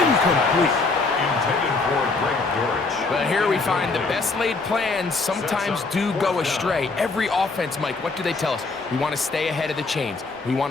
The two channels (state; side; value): quieter; right; 3.8 dB